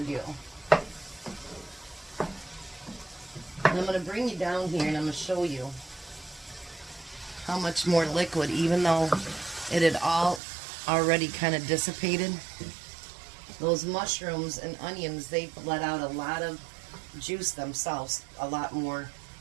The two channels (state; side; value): drops out; left; at 10.4 s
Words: do. And I'm going to bring you down here, and I'm going to show you how much more liquid, even though it had all already kind of dissipated. Those mushrooms and onions, they've let out a lot of juice themselves, a lot more